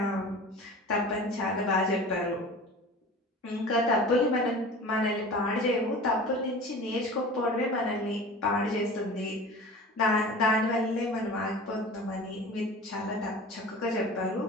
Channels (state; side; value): normal; both; correlation 0.38